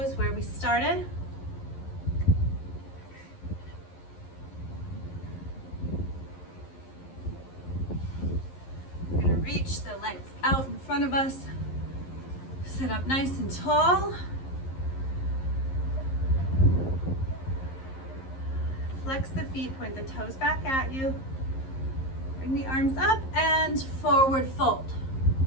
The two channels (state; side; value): late; right; 11 ms